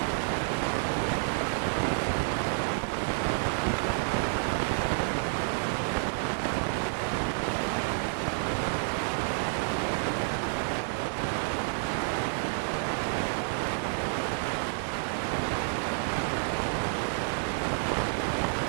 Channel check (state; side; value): silent; left; digital silence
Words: the magnification m is changing, what type of the image and we can call it. Then the power of the lens, it is a 1 mark most important question, and the power of lens, how to define that, what is its formula. Then the power of the lens is the reciprocal of the focal length, and what is